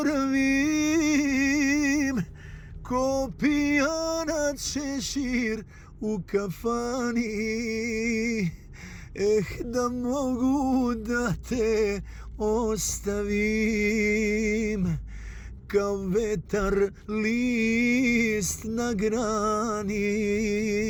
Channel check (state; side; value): identical; both; correlation 1.00